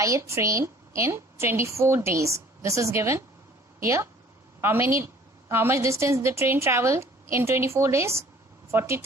a train in 24 days. This is given here. How much distance the train traveled in 24 days?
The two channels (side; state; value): both; normal; correlation 0.53